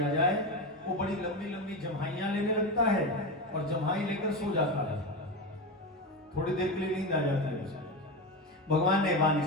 जाए वो बड़ी लंबी लंबी जम्हाइयां लेने लगता है और जम्हाई लेकर सो जाता है। थोड़ी देर के लिए नींद आ जाती है उसे। भगवान ने बाण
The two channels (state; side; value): normal; both; correlation 0.19